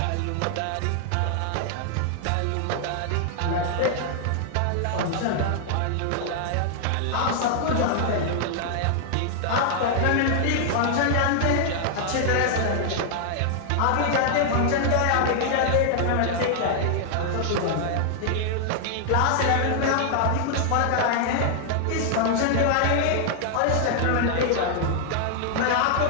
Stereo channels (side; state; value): both; different; correlation 0.00